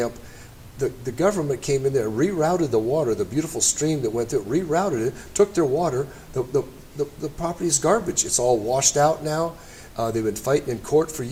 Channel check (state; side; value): identical; both; correlation 1.00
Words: The government came in there, rerouted the water, the beautiful stream that went through, rerouted it, took their water. The property is garbage. It's all washed out now. They've been fighting in court for